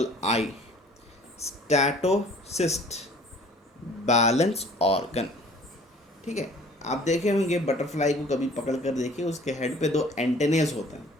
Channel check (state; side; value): normal; both; correlation 0.51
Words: I, statocyst, balance organ. ठीक है, आप देखे होंगे बटरफ्लाई को कभी पकड़ कर देखिए, उसके हेड पे 2 एंटेनेस होते हैं,